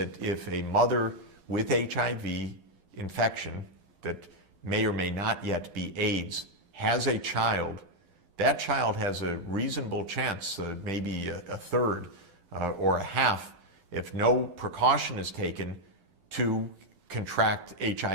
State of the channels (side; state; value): left; late; 11 ms